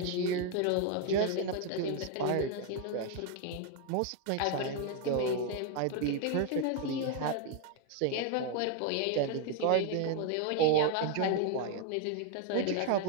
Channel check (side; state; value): both; different; correlation 0.01